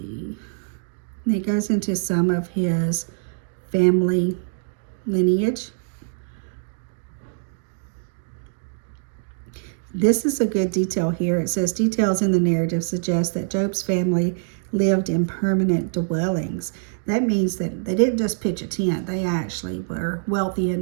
And it goes into some of his family lineage. This is a good detail here. It says, details in the narrative suggest that Job's family lived in permanent dwellings. that means that they didn't just pitch a tent, they actually were wealthy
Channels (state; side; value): silent; left; digital silence